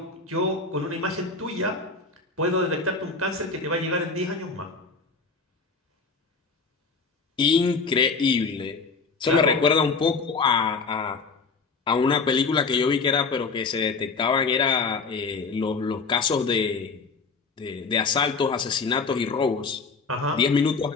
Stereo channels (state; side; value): quieter; right; 4.5 dB